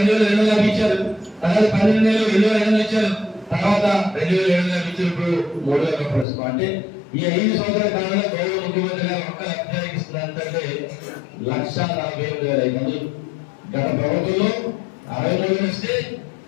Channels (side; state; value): right; drops out; at 6.2 s